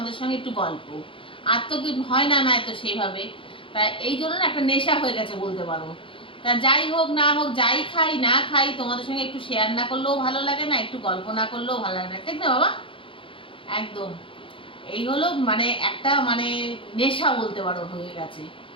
সঙ্গে একটু গল্প। আর তো কি হয় না, তো সেইভাবে তাই এই জন্য না একটা নেশা হয়ে গেছে বলতে পারো। তা যাই হোক না হোক, যাই খাই না খাই, তোমাদের সঙ্গে একটু শেয়ার না করলেও ভালো লাগে না, একটু গল্প না করলেও ভালো লাগে না, ঠিক না বাবা? একদম এই হলো মানে একটা মানে নেশা বলতে পারো হয়ে গেছে।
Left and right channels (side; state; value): right; late; 0.25 ms